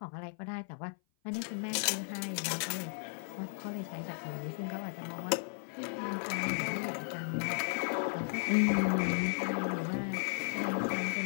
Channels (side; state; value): right; silent; 54 dB below the other